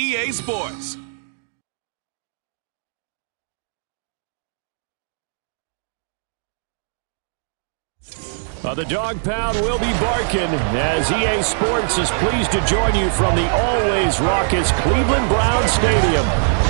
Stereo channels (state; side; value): silent; left; digital silence